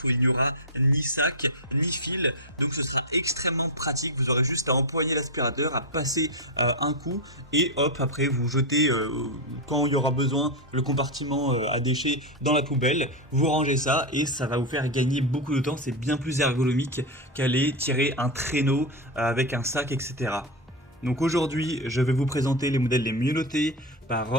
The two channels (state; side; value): normal; both; correlation 0.09